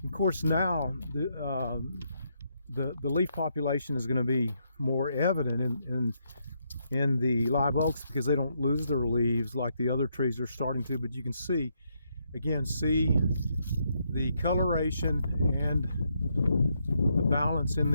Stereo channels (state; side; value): inverted; both; correlation -0.77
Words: Of course, now the leaf population is going to be more evident in the live oaks because they don't lose their leaves like the other trees are starting to. But you can see, again, see the coloration and the balance in